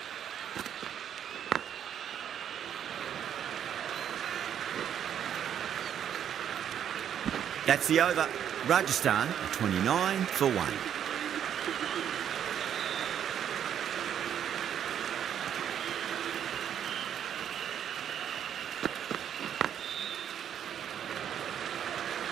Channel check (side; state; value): left; quieter; 9.3 dB